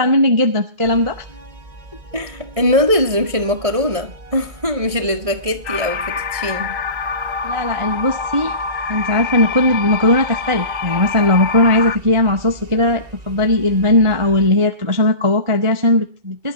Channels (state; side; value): late; left; 1.6 ms